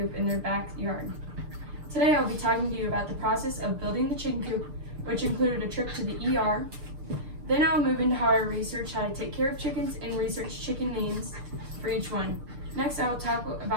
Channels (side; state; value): left; late; 6.7 ms